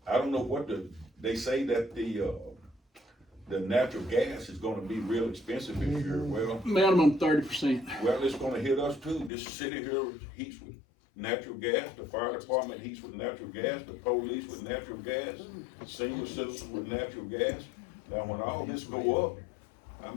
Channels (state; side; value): drops out; right; at 9.3 s